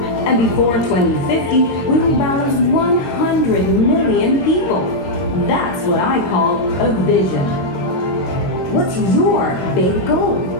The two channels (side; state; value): right; late; 22 ms